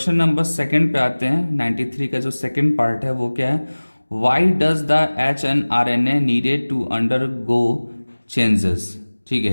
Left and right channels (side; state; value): both; inverted; correlation -1.00